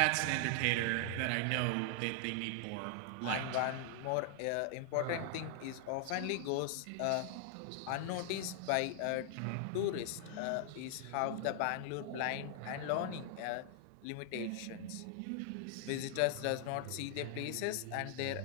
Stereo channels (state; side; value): different; both; correlation 0.00